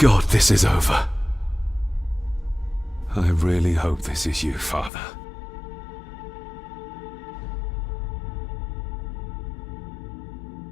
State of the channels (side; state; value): right; drops out; at 4.9 s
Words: this is over. I really hope this is you, Father.